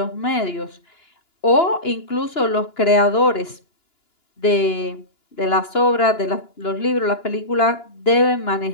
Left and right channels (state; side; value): late; right; 2.9 ms